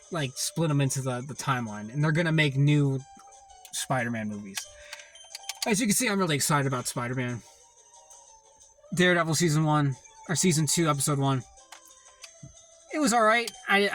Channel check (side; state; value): both; identical; correlation 1.00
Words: like, split him into the timeline. And they're going to make new Spider-Man movies. As you can see, I'm really excited about Spider-Man. Daredevil Season 2, Episode 1. It was alright.